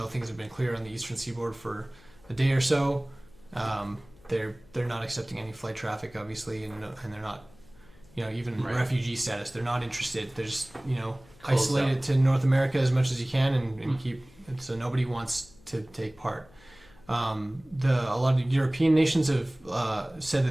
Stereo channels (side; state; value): left; noise; hum, 26 dB below the sound